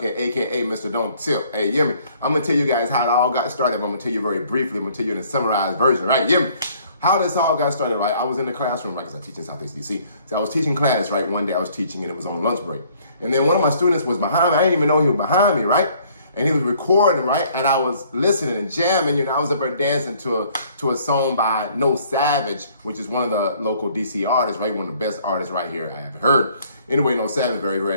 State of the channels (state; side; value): inverted; both; correlation -0.60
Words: AKA Mr. Don't Tip. Hey, you hear me? I'm gonna tell you guys how it all got started. But I'm gonna tell you very briefly. I'm gonna tell you in a summarized version, right? You hear me? How this all got started, right? I was in the classroom, right? Because I teach in Southeast DC. So I was teaching class, right? One day I was teaching and it was on lunch break. And then one of my students was behind me. I didn't even know he was behind me, right? And he was recording, right? And I was listening and jamming. You know, I was up there dancing to a song by No Savage, which is one of the local DC artists, right? One of the best artists right here I have heard. Anyway, No Savage, very,